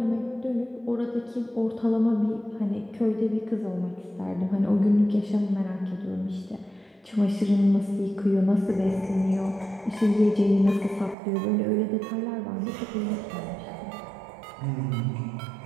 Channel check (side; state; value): left; drops out; at 11.2 s